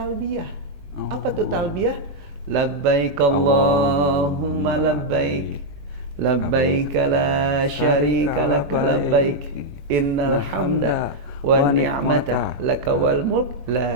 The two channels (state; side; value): late; left; 21 ms